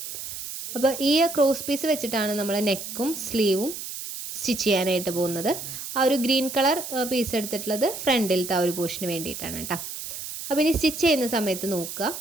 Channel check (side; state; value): right; noise; hiss, 8 dB below the sound